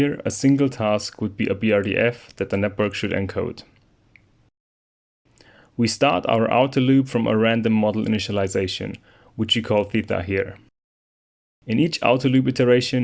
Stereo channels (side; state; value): both; identical; correlation 1.00